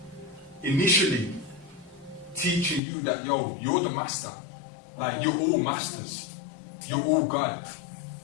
initially teaching you that, yo, you're the master, like you're all masters, you're all God.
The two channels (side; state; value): right; drops out; at 2.8 s